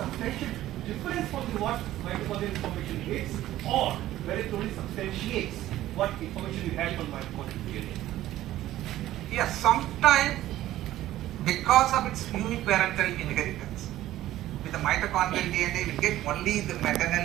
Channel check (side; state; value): left; quieter; 14.3 dB